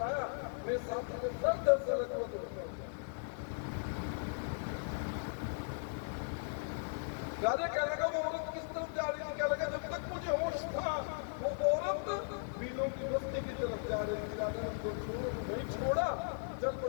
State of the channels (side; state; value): right; silent; digital silence